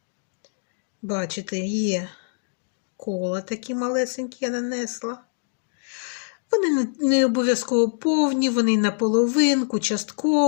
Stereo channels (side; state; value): right; silent; digital silence